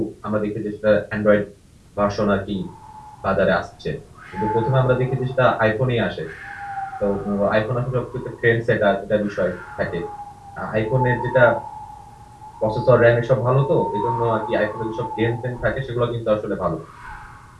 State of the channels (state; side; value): identical; both; correlation 1.00